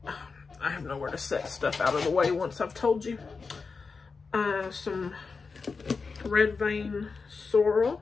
I have nowhere to set stuff out of the way once I've told you. Some red vein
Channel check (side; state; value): right; quieter; 4.7 dB